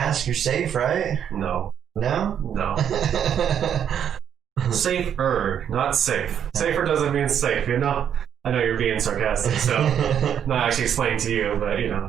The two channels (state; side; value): quieter; left; 8.9 dB